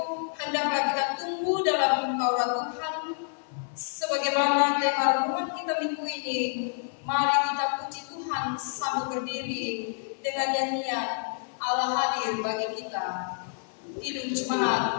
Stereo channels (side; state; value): right; silent; 59 dB below the other